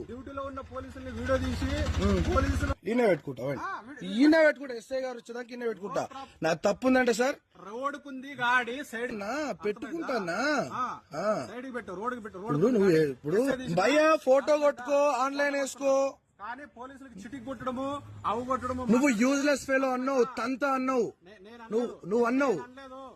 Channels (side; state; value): both; identical; correlation 1.00